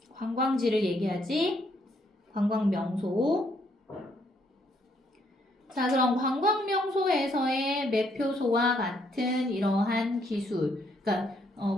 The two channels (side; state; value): both; normal; correlation 0.71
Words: 관광지를 얘기하지. 관광 명소. 자, 그럼 관광 명소에서의 매표소와 같은 이러한 기술, 그러니까